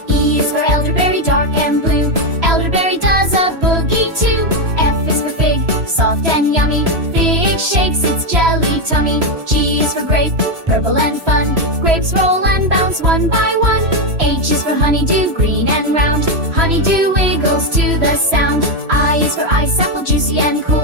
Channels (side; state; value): left; late; 3.0 ms